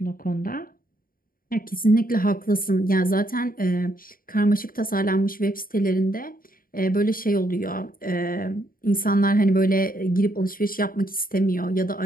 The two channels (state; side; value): late; right; 0.41 ms